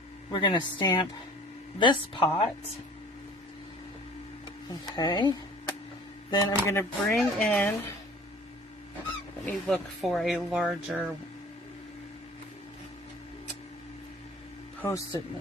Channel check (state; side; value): normal; both; correlation 0.48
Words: going to stamp this pot. Okay. Then I'm going to bring in, let me look for a larger Post-it